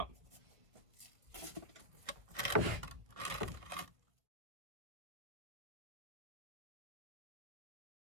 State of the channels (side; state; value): left; late; 1.3 ms